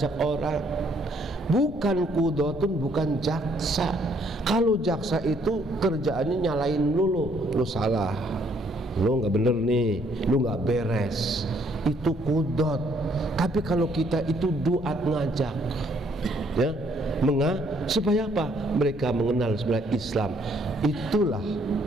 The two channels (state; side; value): normal; both; correlation 0.67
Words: orang, bukan qudatun, bukan jaksa. Kalau jaksa itu kerjaannya nyalain lu salah, lu nggak bener nih, lu nggak beres, itu kudot. Tapi kalau kita itu duat, ngajak, ya, supaya apa? Mereka mengenal sebenarnya Islam. Itulah